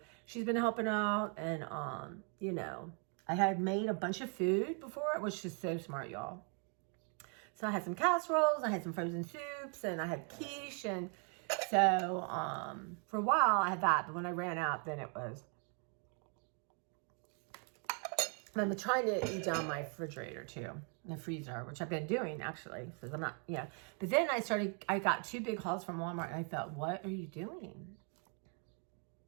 she's been helping out. And, you know, I had made a bunch of food before. It was just so smart, y'all. So I had some casseroles, I had some frozen soups, and I had quiche. And so for a while I had that. But when I ran out, then it was... I'm trying to eat down my refrigerator too, the freezer, which I've been doing actually, because I'm not, yeah. But then I got 2 big hauls from Walmart, and I thought, what are you doing?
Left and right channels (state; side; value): quieter; left; 39.7 dB